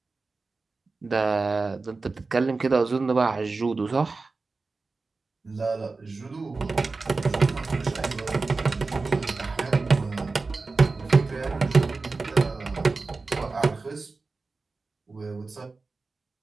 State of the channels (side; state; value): left; quieter; 3.9 dB